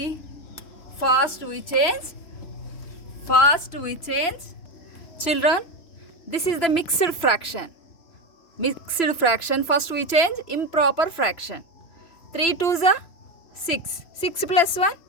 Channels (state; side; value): late; right; 3.0 ms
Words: First we change. Children, this is the mixed fraction. First we change improper fraction. 3 2s are 6. 6 plus 1,